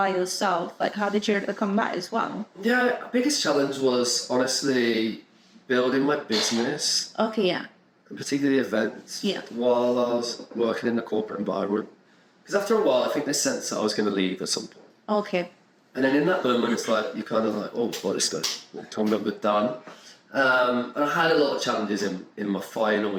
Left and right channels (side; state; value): both; identical; correlation 1.00